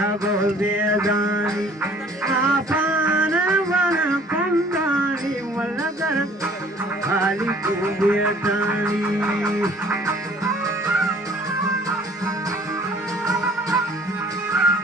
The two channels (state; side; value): normal; both; correlation 0.55